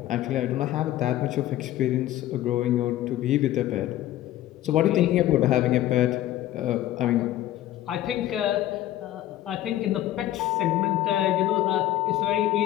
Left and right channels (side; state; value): right; quieter; 14.0 dB